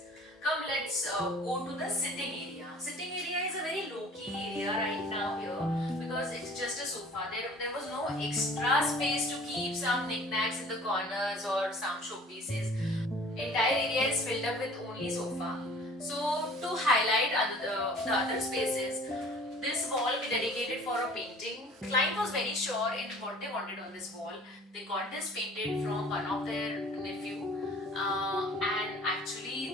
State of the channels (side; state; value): both; normal; correlation 0.49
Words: Come, let's go to the sitting area. Sitting area is a very low-key area right now here because it's just a sofa. There was no extra space to keep some knickknacks in the corners or some showpieces. Entire area is filled up with only sofa. So to highlight the other spaces, this wall we dedicated for a painting. Client was very sure in what they wanted on this wall. They got this painted from one of their nephew, and